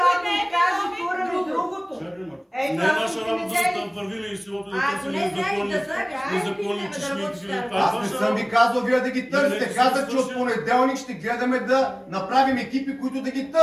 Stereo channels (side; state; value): both; identical; correlation 1.00